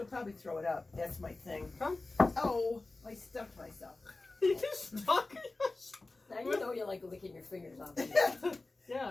probably throw it up. That's my thing. Huh? Oh, I stuffed myself. You stuck Now you know you like licking your fingers off.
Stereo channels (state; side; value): quieter; right; 3.3 dB